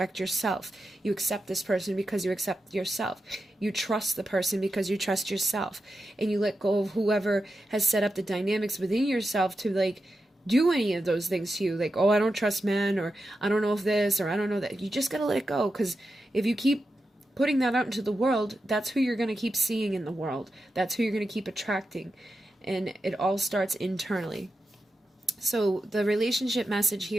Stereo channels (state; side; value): normal; both; correlation 0.90